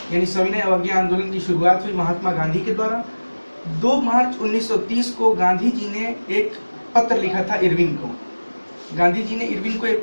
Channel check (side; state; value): both; inverted; correlation -1.00